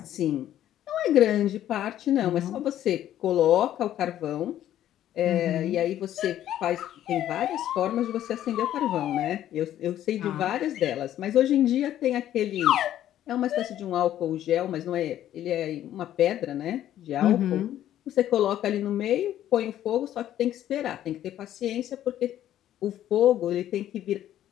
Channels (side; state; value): right; quieter; 12.0 dB